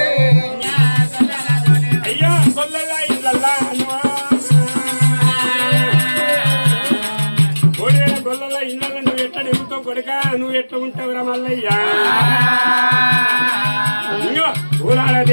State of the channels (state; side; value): inverted; both; correlation -1.00